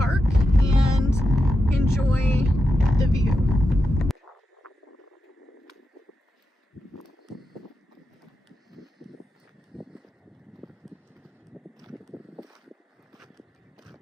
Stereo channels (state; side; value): normal; both; correlation 0.88